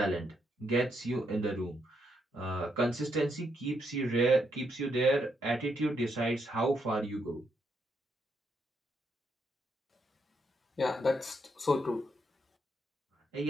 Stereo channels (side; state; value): both; normal; correlation 0.78